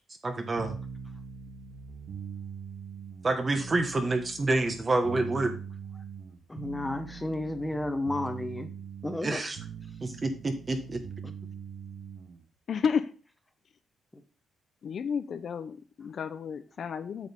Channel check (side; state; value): both; normal; correlation 0.87